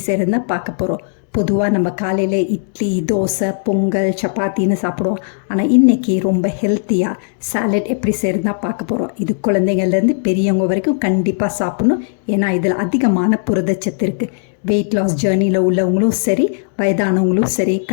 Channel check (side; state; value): right; silent; 68 dB below the other